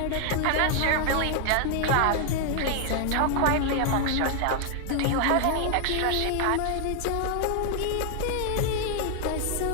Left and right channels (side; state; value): both; different; correlation 0.00